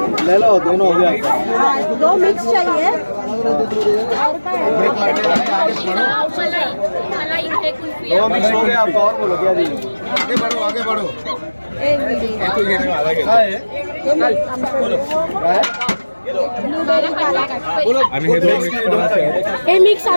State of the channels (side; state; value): both; inverted; correlation -1.00